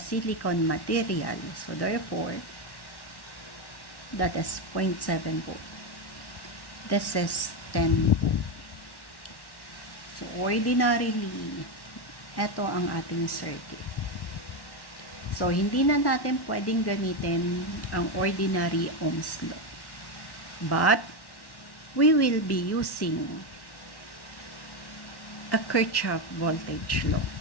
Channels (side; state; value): right; late; 1.1 ms